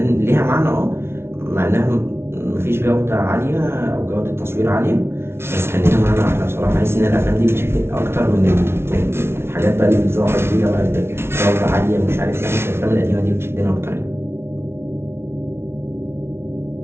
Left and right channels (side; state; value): left; late; 0.12 ms